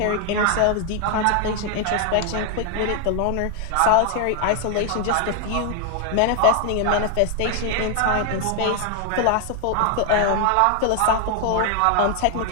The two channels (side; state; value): both; different; correlation 0.00